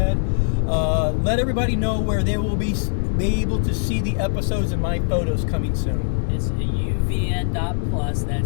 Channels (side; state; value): right; silent; digital silence